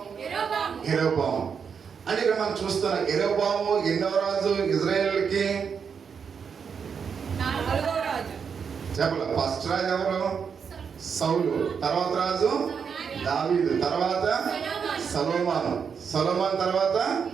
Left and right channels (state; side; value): quieter; left; 6.5 dB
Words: యెరోబాము. అంటే ఇక్కడ మనం చూస్తున్నాం యెరోబాము ఎన్నో రాజు ఇజ్రాయేల్కి చెప్పలే. ఫస్ట్ రాజు ఎవరు? సౌలు. తర్వాత రాజు దావీదు. తర్వాత సొలొమోను. సొలొమోను తర్వాత